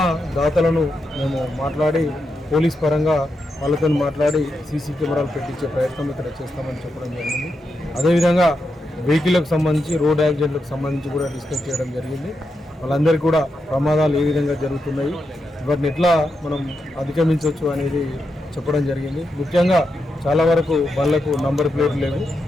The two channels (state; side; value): normal; both; correlation 0.86